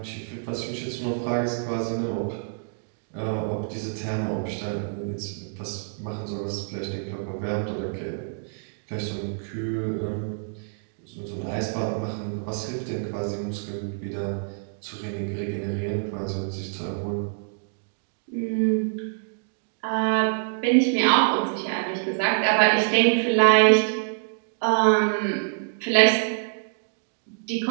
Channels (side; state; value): left; silent; digital silence